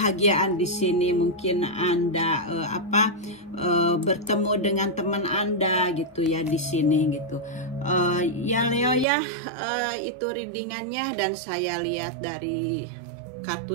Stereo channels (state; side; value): drops out; left; at 9.1 s